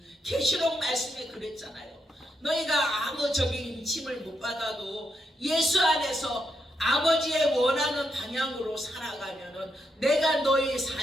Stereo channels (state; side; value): normal; both; correlation 0.82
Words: 계시록 말씀에 그랬잖아요. 너희가 아무 인침을 못 받아도 예수 안에서 아버지의 원하는 방향으로 살아가면은 내가 너희